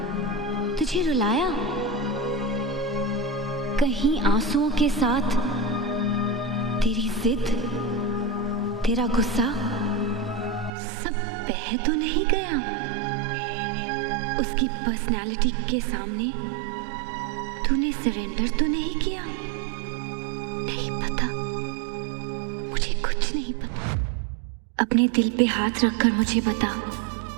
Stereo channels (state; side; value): drops out; left; at 10.7 s